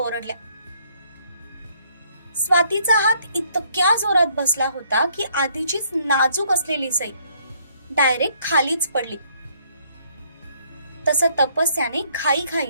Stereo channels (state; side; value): inverted; both; correlation -0.66